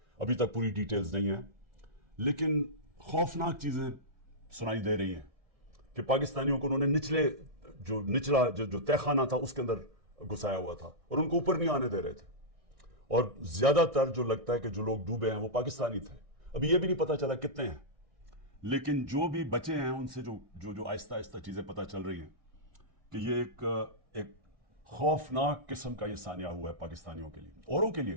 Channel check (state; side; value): late; left; 1.6 ms